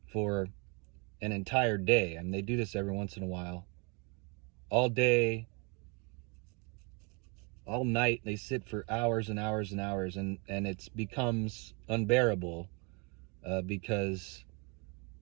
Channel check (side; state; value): left; quieter; 32.5 dB